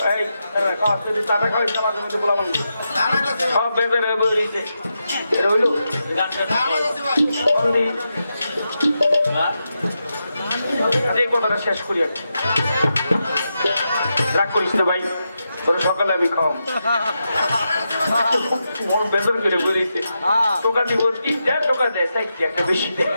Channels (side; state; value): both; inverted; correlation -0.87